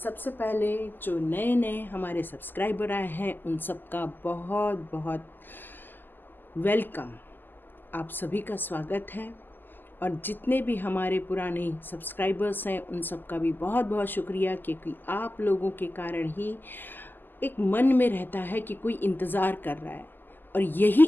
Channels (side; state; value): right; late; 0.091 ms